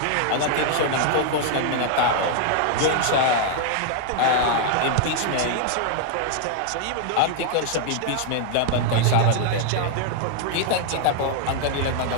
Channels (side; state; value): both; different; correlation 0.00